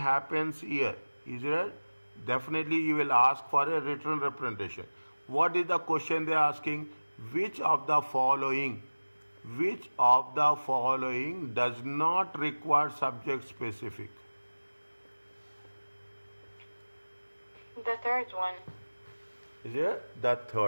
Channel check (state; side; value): inverted; both; correlation -1.00